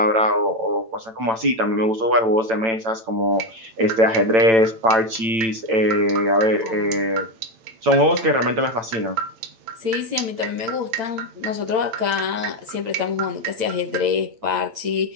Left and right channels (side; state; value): left; late; 8.9 ms